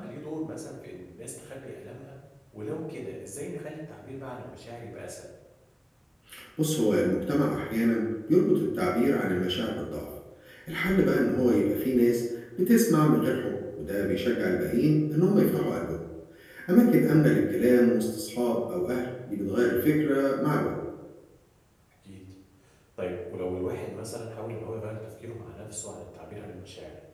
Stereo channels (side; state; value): both; identical; correlation 1.00